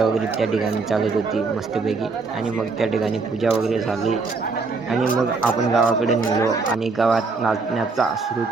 वगैरे त्या ठिकाणी चालत होती मस्तपैकी, आणि मग त्या ठिकाणी पूजा वगैरे झाली आणि मग आपण गावाकडे निघालो आणि गावात नाचण्याचा सुरू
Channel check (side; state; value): left; quieter; 4.2 dB